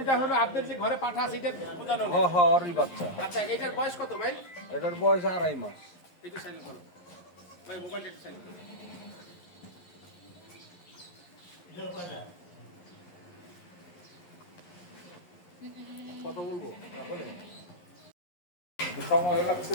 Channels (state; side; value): late; right; 11 ms